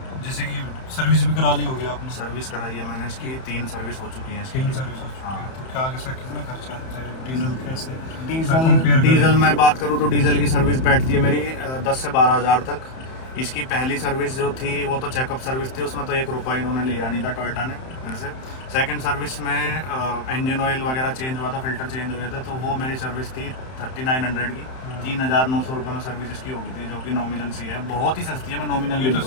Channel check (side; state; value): right; late; 31 ms